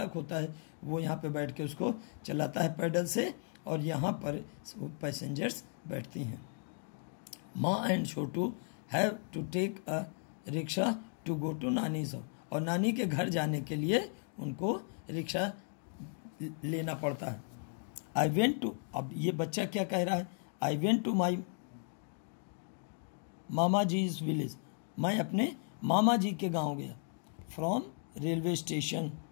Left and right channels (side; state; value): right; silent; 54 dB below the other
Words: होता है, वो यहाँ पे बैठ के उसको चलाता है पैडल से, और यहाँ पर पैसेंजर्स बैठती हैं। Maa and Chhotu have to take a rickshaw to go to nani's house, और नानी के घर जाने के लिए उनको रिक्शा लेना पड़ता है। आई वेंट टू, अब ये बच्चा क्या कह रहा है? I went to my mama ji's village, मैं अपने मामा जी के गांव गया। फ्रॉम रेलवे स्टेशन,